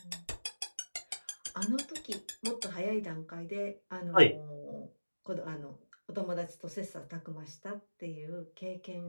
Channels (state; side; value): inverted; both; correlation -1.00